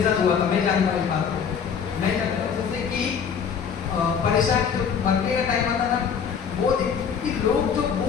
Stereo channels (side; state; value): right; quieter; 7.0 dB